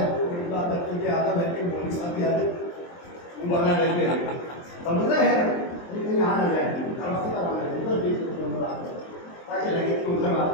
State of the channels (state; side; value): late; right; 23 ms